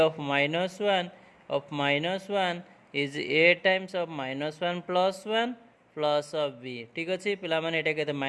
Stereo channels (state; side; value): identical; both; correlation 1.00